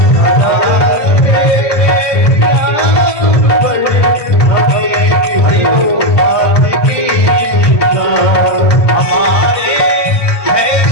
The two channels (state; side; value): late; right; 1.7 ms